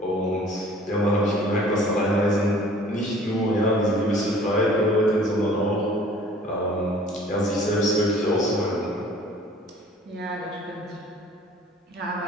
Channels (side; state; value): both; normal; correlation 0.51